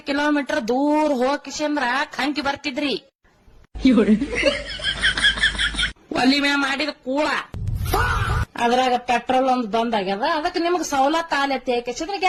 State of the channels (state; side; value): identical; both; correlation 1.00